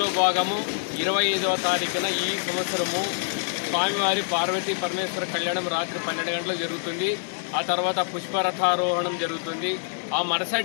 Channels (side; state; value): right; silent; 61 dB below the other